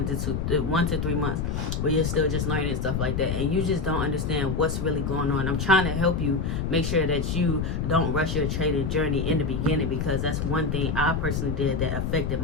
to 3 months, where you're still just learning stuff like that, and you just don't understand what's really going on. I'm trying to help you make sure that you don't rush your trading journey in the beginning, because that's one thing I personally did that affected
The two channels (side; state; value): left; noise; rumble, 1 dB below the sound